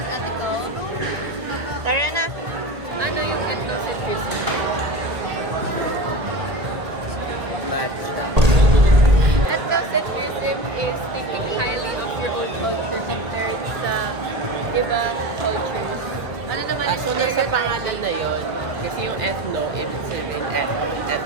ethical. Tara na. Ano yung ethnocentrism? Matcha. Ethnocentrism is thinking highly of your own culture compared sa ibang cultures. Ano naman yung So, nasa pangalan na yun, kasi yung ethno, ibig sabihin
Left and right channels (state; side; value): late; left; 1.8 ms